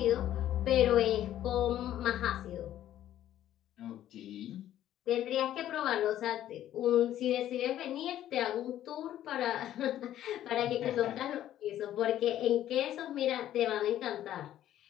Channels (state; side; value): quieter; right; 12.2 dB